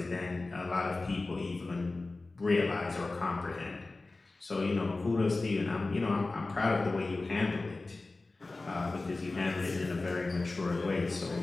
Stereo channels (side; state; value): right; quieter; 3.3 dB